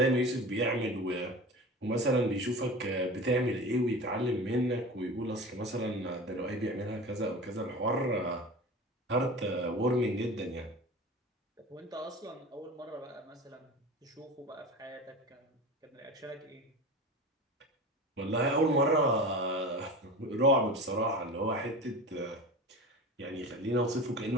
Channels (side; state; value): both; normal; correlation 0.33